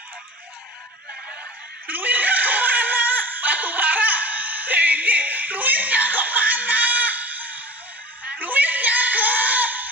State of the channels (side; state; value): both; normal; correlation 0.37